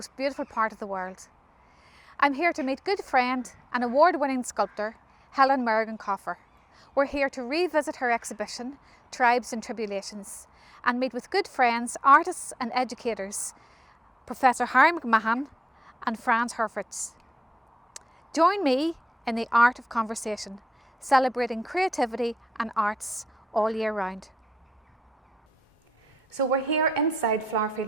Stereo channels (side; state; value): both; normal; correlation 0.89